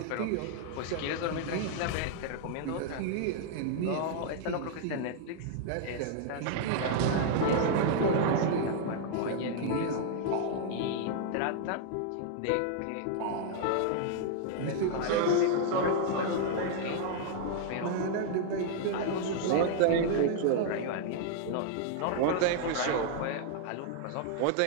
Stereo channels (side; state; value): both; different; correlation 0.00